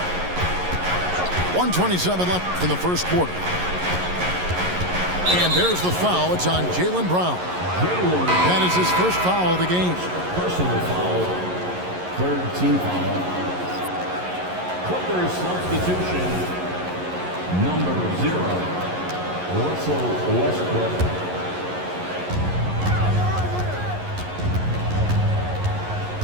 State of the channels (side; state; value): left; late; 11 ms